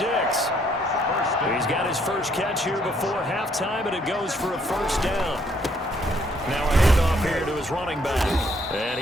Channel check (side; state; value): both; normal; correlation 0.68